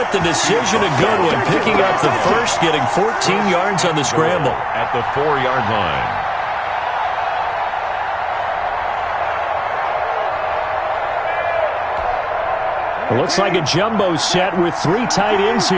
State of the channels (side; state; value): both; identical; correlation 1.00